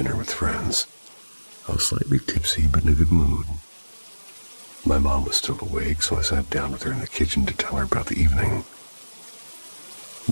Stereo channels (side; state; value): both; inverted; correlation -1.00